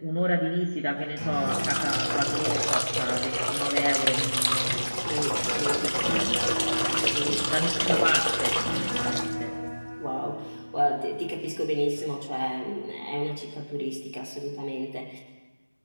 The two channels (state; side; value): inverted; both; correlation -1.00